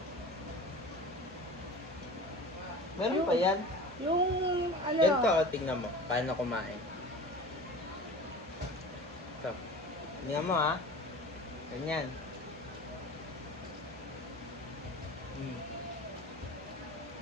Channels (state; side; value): normal; both; correlation 0.37